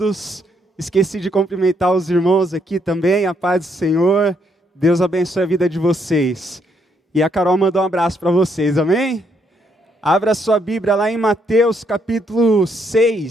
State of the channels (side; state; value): both; normal; correlation 0.73